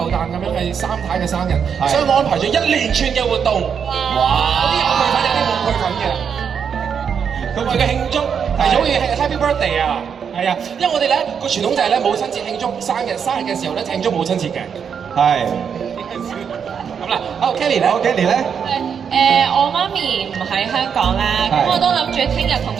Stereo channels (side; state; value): left; quieter; 7.2 dB